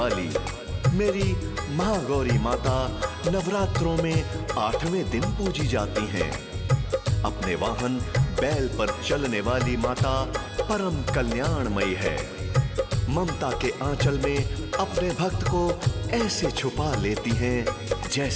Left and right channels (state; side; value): identical; both; correlation 1.00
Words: मेरी महागौरी माता नवरात्रों में 8वें दिन पूजी जाती हैं। अपने वाहन बैल पर चलने वाली माता परम कल्याणमयी है। ममता के आंचल में अपने भक्त को ऐसे छुपा लेती हैं